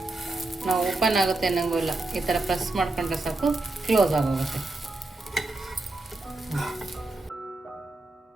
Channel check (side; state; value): left; quieter; 3.0 dB